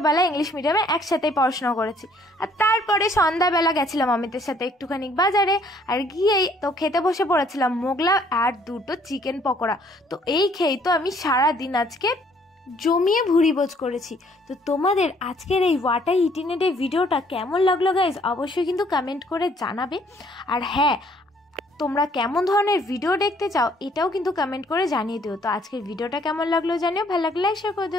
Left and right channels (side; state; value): both; normal; correlation 0.63